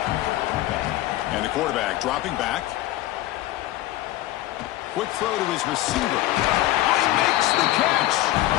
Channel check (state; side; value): quieter; right; 15.9 dB